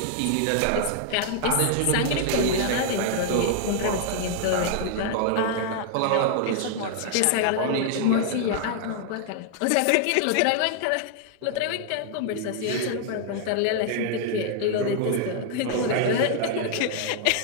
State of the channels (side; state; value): both; different; correlation 0.00